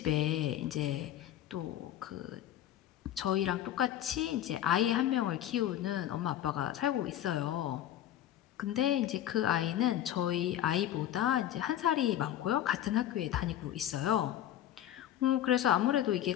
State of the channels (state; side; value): quieter; right; 11.9 dB